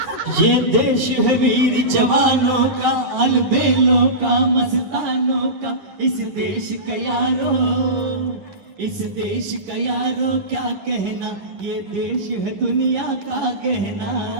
ये देश है वीर जवानों का, अलबेलों का, मस्तानों का, इस देश का यारो, इस देश का यारो क्या कहना, ये देश है दुनिया का कहना.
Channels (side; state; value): left; late; 10 ms